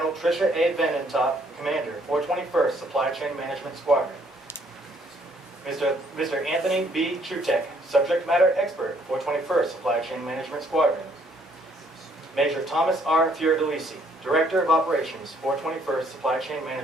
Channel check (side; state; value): both; normal; correlation 0.66